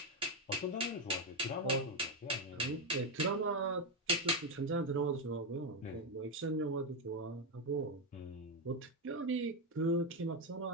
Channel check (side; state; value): both; normal; correlation 0.08